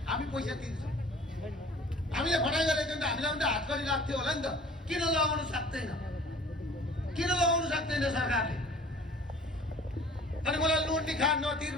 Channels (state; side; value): normal; both; correlation 0.48